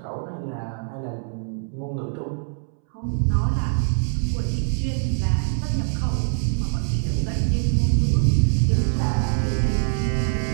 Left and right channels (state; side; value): silent; left; 63 dB below the other